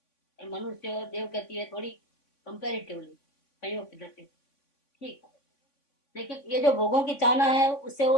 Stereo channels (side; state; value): right; late; 3.5 ms